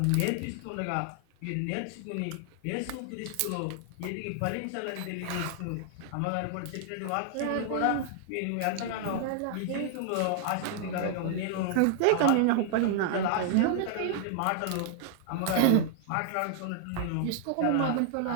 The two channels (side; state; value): both; different; correlation -0.01